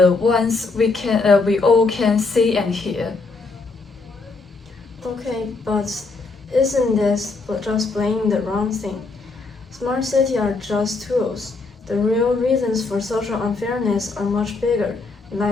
ones we all can see and hear. Okay, but isn't this just playing the wrong thing? Smart cities are just tools. The real reasons for social unfairness are much bigger,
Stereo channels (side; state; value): right; quieter; 3.8 dB